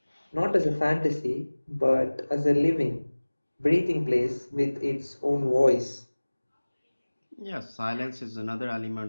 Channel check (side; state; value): both; inverted; correlation -1.00